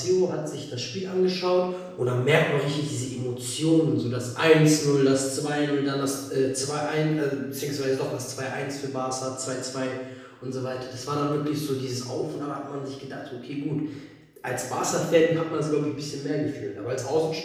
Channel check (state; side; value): identical; both; correlation 1.00